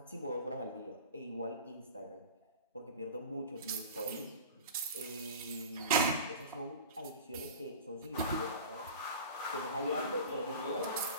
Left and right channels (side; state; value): both; inverted; correlation -0.35